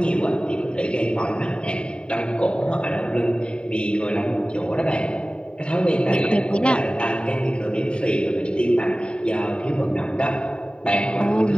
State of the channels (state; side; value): late; right; 0.052 ms